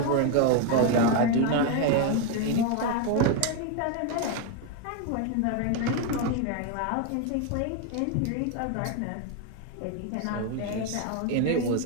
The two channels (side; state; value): both; different; correlation 0.01